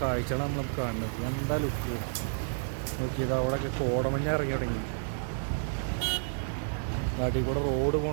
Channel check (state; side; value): silent; left; digital silence